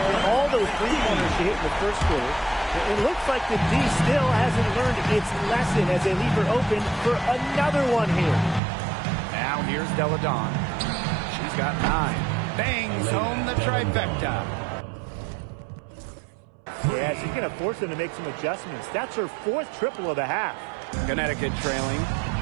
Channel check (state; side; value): drops out; left; at 8.6 s